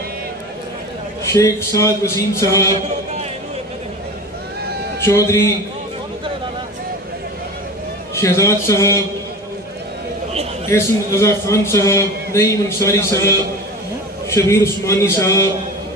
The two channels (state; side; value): normal; both; correlation 0.33